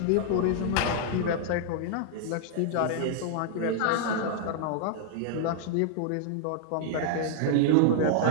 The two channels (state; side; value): different; both; correlation -0.01